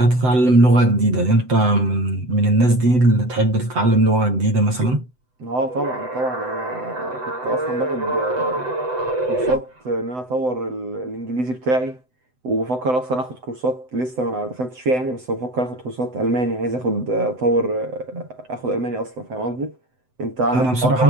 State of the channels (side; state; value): left; late; 7.9 ms